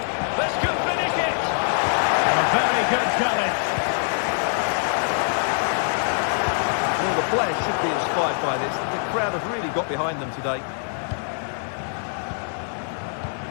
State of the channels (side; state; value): right; silent; 63 dB below the other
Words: This could finish it! A very good challenge. Well, the players should be inspired by this. The crowd have really got behind them today.